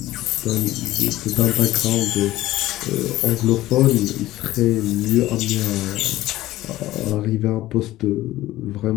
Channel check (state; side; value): quieter; right; 16.0 dB